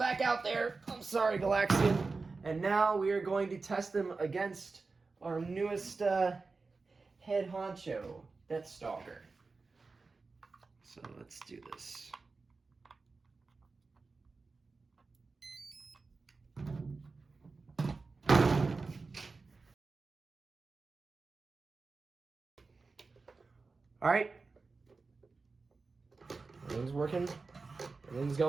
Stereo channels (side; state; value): left; quieter; 4.1 dB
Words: out there. I'm sorry, Galaxian. And now we are going to test him against our newest head honcho, that's Stalker. So let's do this. All right. Everything's working. Everything's